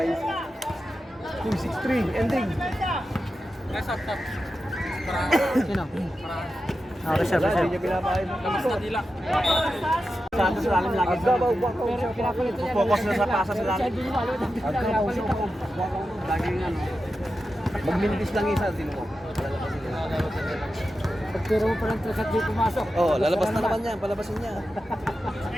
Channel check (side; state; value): both; normal; correlation 0.91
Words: 2-6-3, ending. Sino? Reserve. Sa lalim lagi. Focus na sa pasa sa lalim. Laging ano. Magmintis lang isa, sino mo? Pagtiro mo pa lang trasat di pumasok. Oh, lalabas na naman yan, palabasin niya.